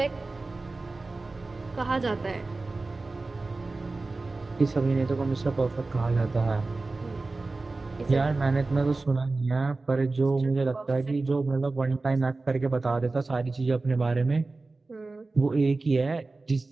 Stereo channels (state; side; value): quieter; left; 3.5 dB